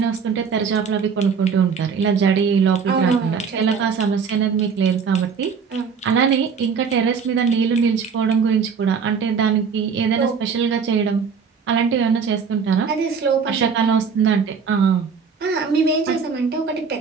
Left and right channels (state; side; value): quieter; left; 6.0 dB